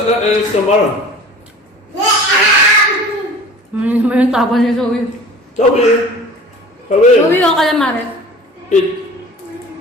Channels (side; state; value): both; normal; correlation 0.43